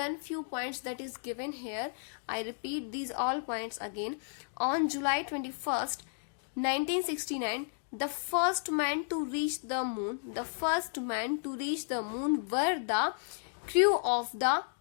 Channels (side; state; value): right; silent; digital silence